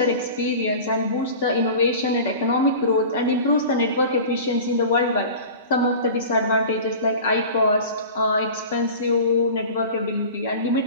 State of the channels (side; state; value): both; inverted; correlation -0.37